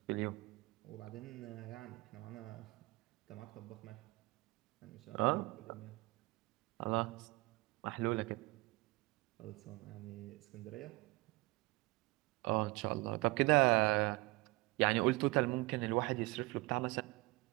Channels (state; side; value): quieter; left; 23.2 dB